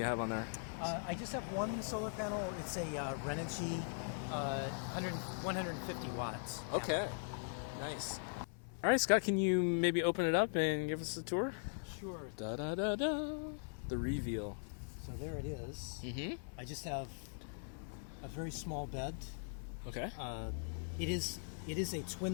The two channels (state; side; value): silent; right; 51 dB below the other